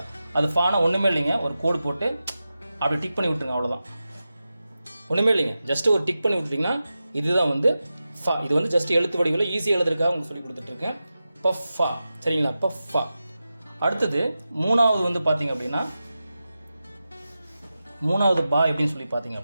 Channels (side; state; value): both; inverted; correlation -0.93